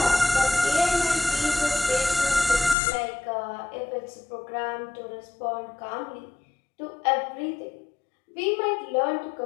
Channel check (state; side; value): drops out; right; at 2.8 s